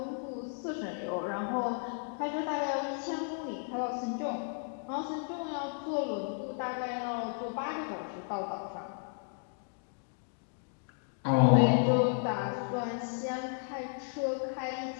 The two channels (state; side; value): silent; right; 55 dB below the other